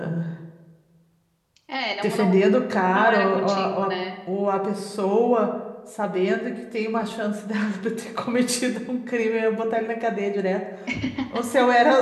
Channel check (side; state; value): both; identical; correlation 1.00